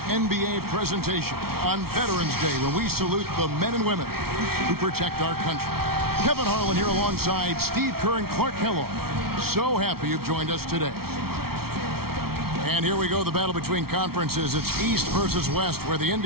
NBA presentation on Veterans Day, when we salute the men and women who protect our country. Kevin Harlan here alongside Steve Kerr and Clark Kellogg. So happy you've joined us today. And here we go, the battle between conferences. It's East versus West, where the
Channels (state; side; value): late; left; 0.94 ms